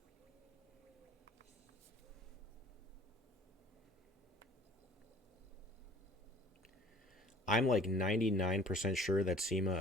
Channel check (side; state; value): both; normal; correlation 0.51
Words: I'm like 99% sure that